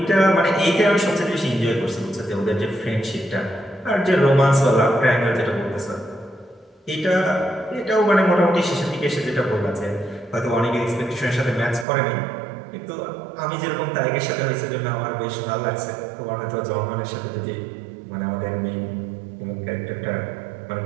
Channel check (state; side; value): drops out; left; at 11.9 s